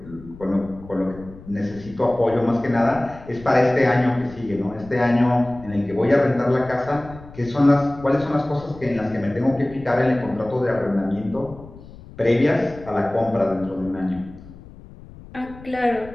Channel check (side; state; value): left; noise; rumble, 18 dB below the sound